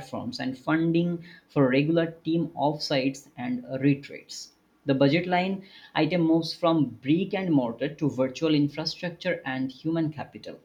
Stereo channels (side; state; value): both; identical; correlation 1.00